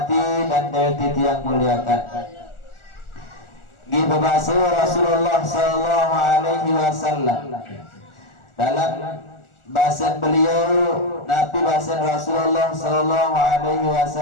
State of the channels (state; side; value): late; right; 1.4 ms